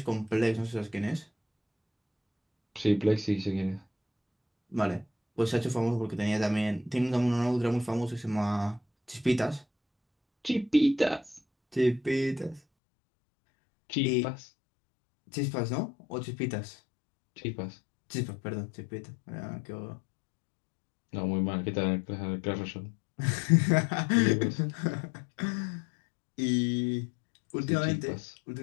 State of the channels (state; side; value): drops out; right; at 12.6 s